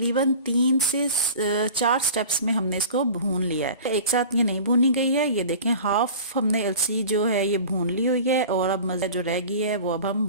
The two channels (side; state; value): both; inverted; correlation -0.39